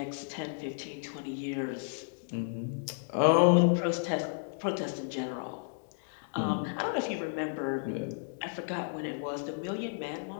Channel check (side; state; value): right; silent; digital silence